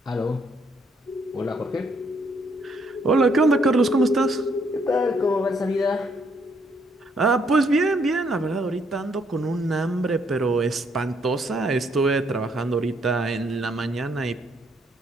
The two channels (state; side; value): normal; both; correlation 0.70